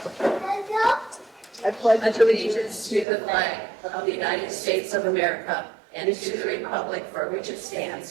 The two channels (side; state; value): left; drops out; at 3.1 s